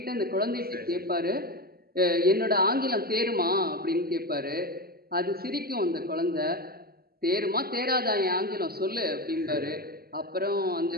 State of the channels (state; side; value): late; left; 0.45 ms